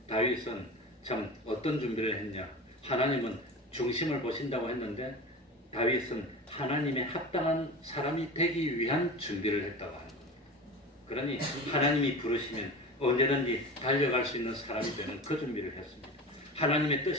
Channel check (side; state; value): both; normal; correlation 0.31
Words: 다윗은 참 어떤 준비를 했냐? 하나님은 중심을 보신다고 했는데 다윗은 하나님의 합당한 사람이 되기 위한 준비를 했다고 하는 겁니다. 그러니 하나님이 부르시면 언제든지 달려갈 수 있는 사람이 되는 그 준비를 했습니다. 하나님의